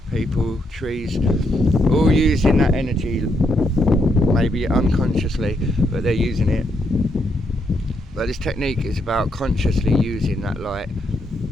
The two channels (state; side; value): normal; both; correlation 0.77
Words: people, trees, all using that energy, maybe unconsciously, but they're using it. But this technique is about consciously using that light